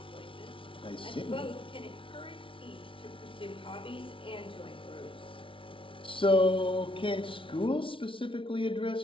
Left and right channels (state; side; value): late; right; 0.25 ms